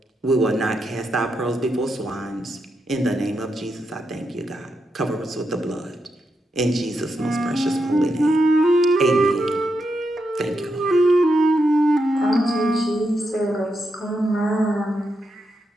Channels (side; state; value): both; normal; correlation 0.84